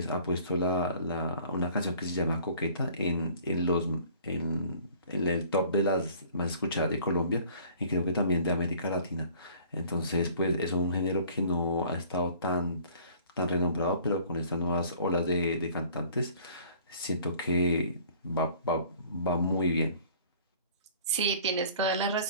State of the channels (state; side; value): inverted; both; correlation -0.52